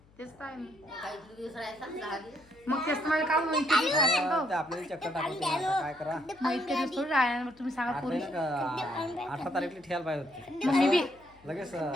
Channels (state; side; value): noise; left; hum, 29 dB below the sound